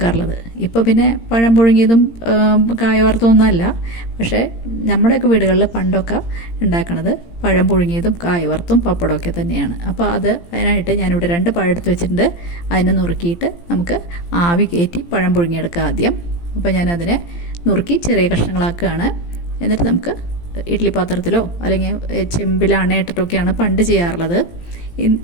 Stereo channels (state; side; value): late; right; 17 ms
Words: ഇപ്പോൾ പിന്നെ പഴം പുഴുങ്ങിയതും കായ വറുത്തതൊന്നുമല്ല. പക്ഷേ നമ്മുടെയൊക്കെ വീടുകളിൽ പണ്ടൊക്കെ ഉണ്ടാക്കുന്നത് പഴം പുഴുങ്ങിയതും കായ വറുത്തും പപ്പടമൊക്കെ തന്നെയാണ്. അപ്പോൾ അതിനായിട്ട് ഞാനിവിടെ 2 പഴം എടുത്ത് വെച്ചിട്ടുണ്ട്. അതിനെ നുറുക്കിയിട്ട് നമുക്ക് ആവി കയറ്റി പഴം പുഴുങ്ങിയെടുക്കാം ആദ്യം. അപ്പോൾ ഞാനതിനെ നുറുക്കി ചെറിയ കഷ്ണങ്ങളാക്കുകയാണ്. എന്നിട്ട് നമുക്ക് ഇഡ്ഡലി പാത്രത്തിലോ അല്ലെങ്കിൽ ചെമ്പിലാണ് ഇട്ടിട്ടൊക്കെയാണ് പണ്ട് ചെയ്യാറുള്ളത്.